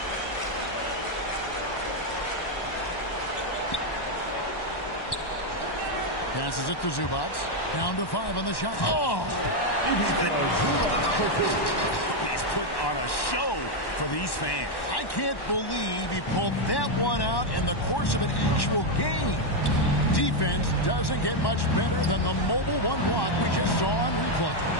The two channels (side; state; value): right; late; 1.1 ms